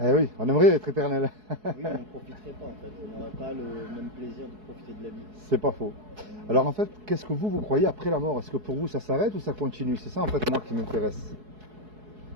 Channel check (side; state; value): left; late; 4.7 ms